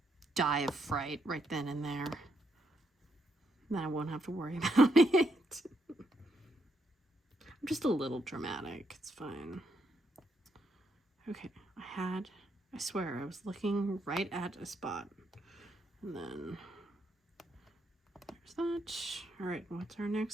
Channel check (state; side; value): normal; both; correlation 0.77